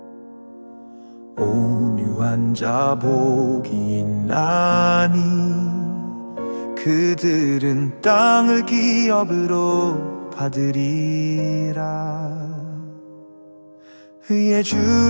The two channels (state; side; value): inverted; both; correlation -1.00